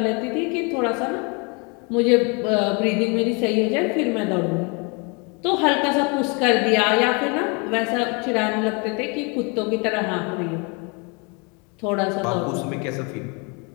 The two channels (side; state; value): right; quieter; 31.9 dB